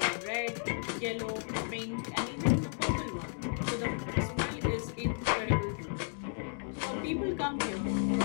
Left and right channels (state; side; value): silent; right; 55 dB below the other